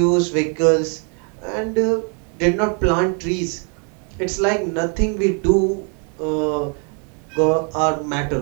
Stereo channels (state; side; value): quieter; left; 39.8 dB